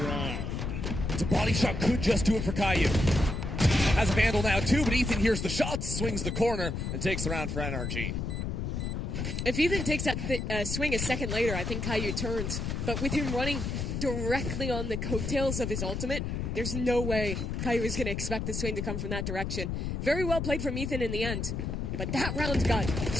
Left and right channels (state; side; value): noise; left; rumble, 3 dB below the sound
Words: It's a body shot, could just do it for Caillou. Has a Vandal now too, but Ethan hears the shots, swings the corner, and takes the round for NRG. If Ethan takes that swing a second later, I think Caillou turns. But with him running directly on the coattails of his ultimate, there's no way Caillou is going to expect the swing to come from that direction. Very well played from Ethan in the end. But that round got